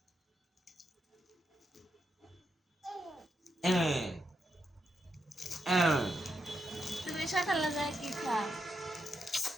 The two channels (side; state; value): both; normal; correlation 0.83